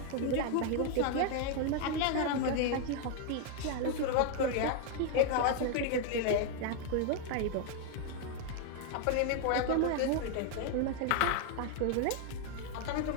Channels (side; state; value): both; different; correlation 0.00